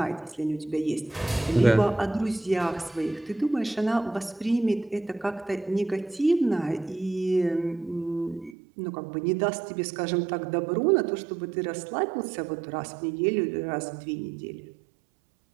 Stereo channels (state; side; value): drops out; left; at 8.6 s